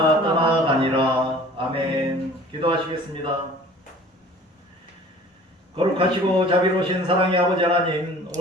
떠나가니라. 아멘. 기도하시겠습니다. 거룩하시고 자비로우신 사랑의 아버지 하나님,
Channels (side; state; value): both; normal; correlation 0.47